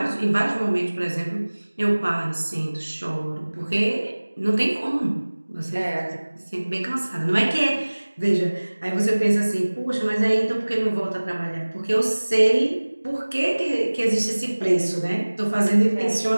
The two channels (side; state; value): both; inverted; correlation -1.00